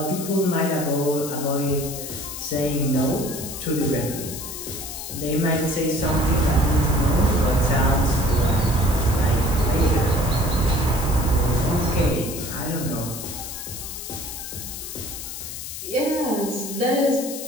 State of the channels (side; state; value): left; noise; hiss, 8 dB below the sound